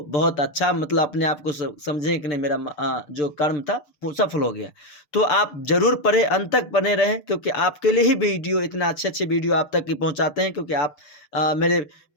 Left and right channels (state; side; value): late; right; 6.9 ms